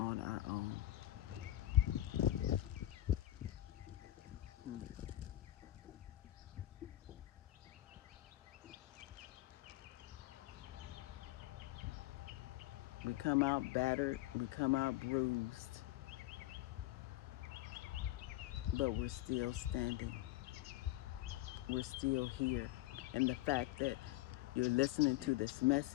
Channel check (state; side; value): quieter; right; 15.6 dB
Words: our own. Hmm. We come out battered, we come out bruised, but we're still standing. We're still here. And the fact that you're listening to this